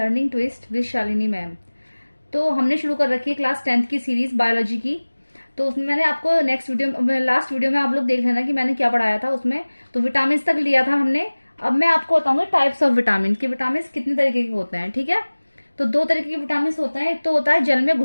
twist with Shalini ma'am. तो हमने शुरू कर रखी है क्लास 10th की सीरीज बायोलॉजी की। तो उसमें मैंने आपको लास्ट वीडियो में आप लोग देख लेना कि मैंने क्या पढ़ाया था उसमें। तो विटामिन तक लिया था हमने। अब मैं आपको बताऊंगी टाइप्स ऑफ विटामिन कि विटामिन कितने तरीके के होते हैं। ठीक है, तो दो तरीके के विटामिन होते हैं। एक तो होता है जल में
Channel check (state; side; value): inverted; both; correlation -1.00